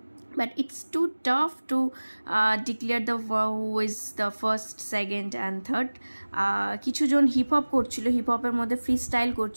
But it's too tough to declare who is the first, second and third. কিছুজন হিপ হপ করছিল, হিপ হপের মধ্যে ফ্রি স্টাইল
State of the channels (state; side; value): inverted; both; correlation -1.00